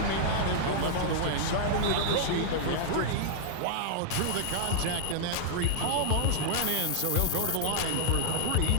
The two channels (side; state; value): both; different; correlation -0.01